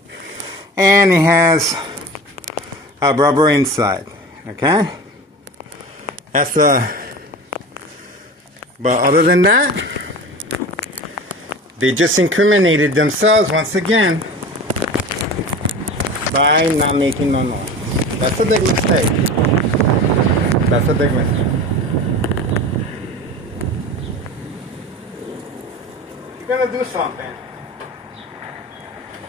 and it has a rubber inside. Okay, that's but other than that, they just incriminated themselves once again by not making no noise. That's a big mistake. That's a big mistake. If you're gonna do something,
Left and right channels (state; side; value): normal; both; correlation 0.34